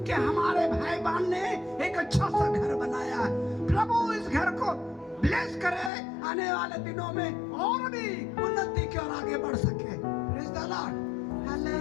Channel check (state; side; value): drops out; right; at 5.9 s